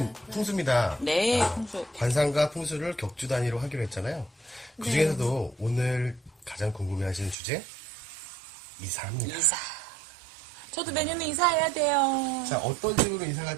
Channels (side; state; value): left; drops out; at 7.4 s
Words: 풍수입니다. 네, 풍수. 관상과 풍수를 격주 단위로 하기로 했잖아요. 그 중에서도 오늘 가장 궁금해하시는 주제 이사입니다. 이사. 저도 내년에 이사해야 돼요. 자, 어떤 식으로 이사